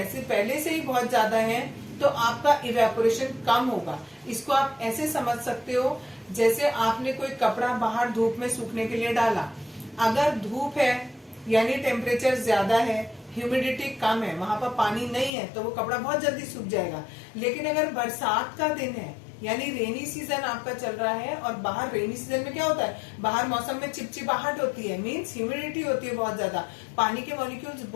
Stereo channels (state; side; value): drops out; right; at 15.3 s